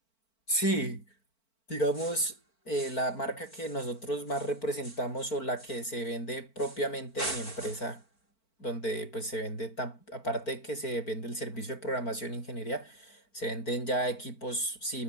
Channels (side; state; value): right; late; 4.5 ms